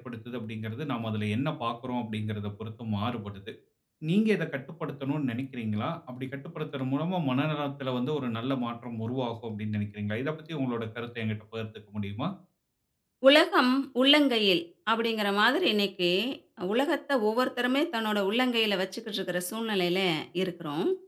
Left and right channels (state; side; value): identical; both; correlation 1.00